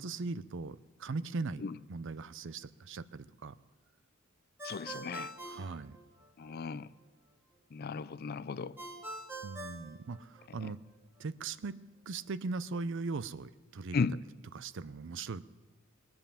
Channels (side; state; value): both; normal; correlation 0.53